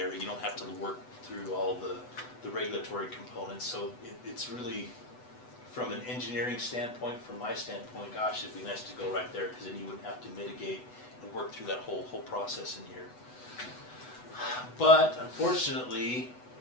You don't have to work through all the regulatory components. So it's really, from an engineering standpoint, from my standpoint, gosh, it'd be nice to go right there, because then you wouldn't have to mitigate and work through that whole process in here. But unfortunately,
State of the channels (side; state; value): right; late; 8.1 ms